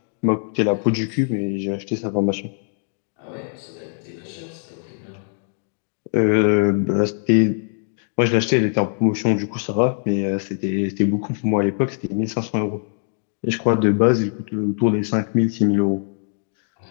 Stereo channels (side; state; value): right; silent; digital silence